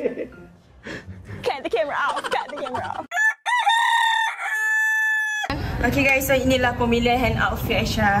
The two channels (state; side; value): identical; both; correlation 1.00